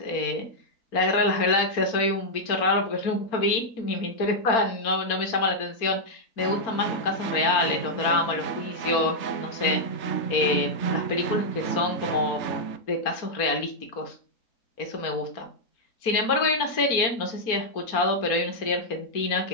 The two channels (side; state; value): right; late; 4.4 ms